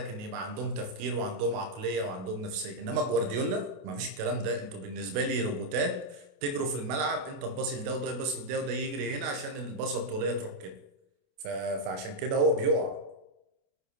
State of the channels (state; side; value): late; left; 28 ms